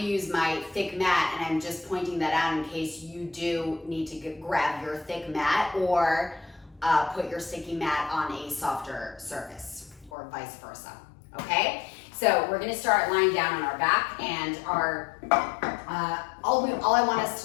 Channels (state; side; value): drops out; right; at 10.1 s